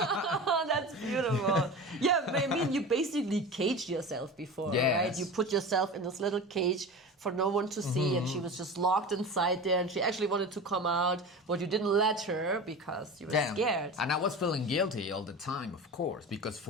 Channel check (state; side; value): normal; both; correlation 0.31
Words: that's beautiful. Yeah, I mean, you basically caged yourself before, Yes. right? You put yourself in this little cage for no one to see, and she was just locked inside there, and she actually wanted to come out, but you didn't let her because you were scared. And I was feeling guilty all the time, of course, because